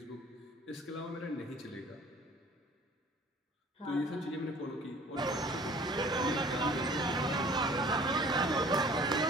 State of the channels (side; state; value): both; normal; correlation 0.50